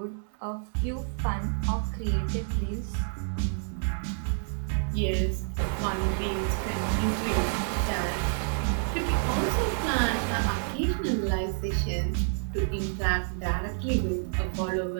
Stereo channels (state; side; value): silent; left; 59 dB below the other